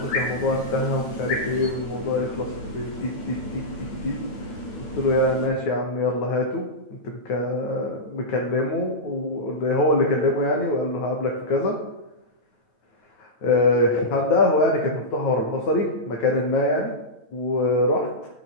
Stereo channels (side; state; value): right; late; 9.1 ms